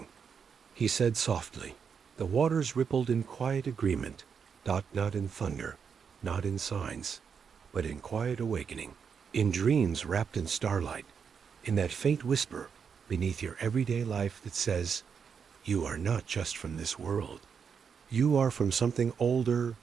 he said softly. The waters rippled in quiet agreement, not in thunder, not in signs, but in quiet awakening, in dreams wrapped in starlight, in that faint whisper beneath your everyday life that says, "You are not just from this world. You are from something older,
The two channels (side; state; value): left; quieter; 6.6 dB